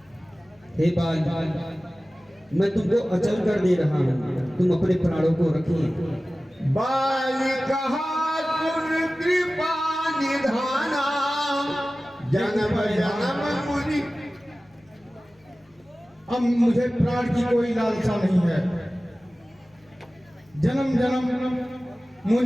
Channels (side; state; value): both; normal; correlation 0.96